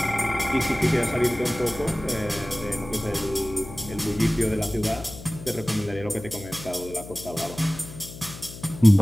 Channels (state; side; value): noise; left; hum, 14 dB below the sound